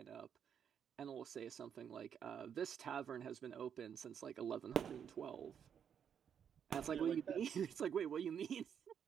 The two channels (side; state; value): left; quieter; 8.1 dB